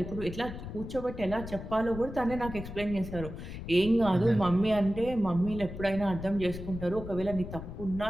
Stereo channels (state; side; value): noise; left; rumble, 10 dB below the sound